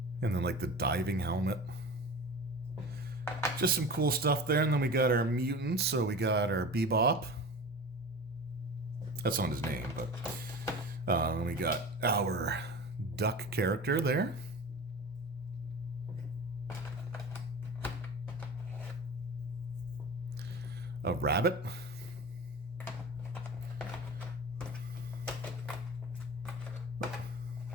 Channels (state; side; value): normal; both; correlation 0.33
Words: And then like the diving helmet. Just some cool stuff there. And then we got our mutants. So we got our Bebop. That's not his name, but then we got our duck character there. A rabbit.